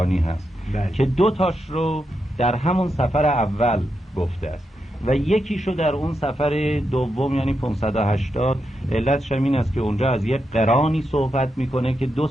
هست که 2 تاش رو در همون سفر اول گفته است و یکیشو در اون سفر دوم یعنی 580. علتش این است که اونجا از یک قرانی صحبت میکنه که 2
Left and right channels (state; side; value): normal; both; correlation 0.85